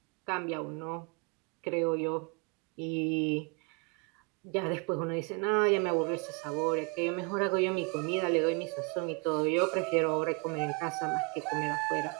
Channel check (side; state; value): left; quieter; 32.9 dB